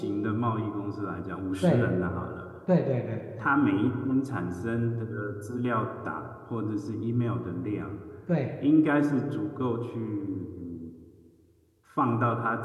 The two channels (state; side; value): identical; both; correlation 1.00